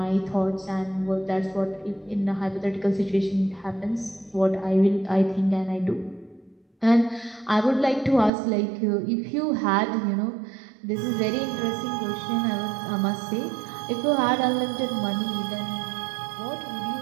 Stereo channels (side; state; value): left; drops out; at 8.3 s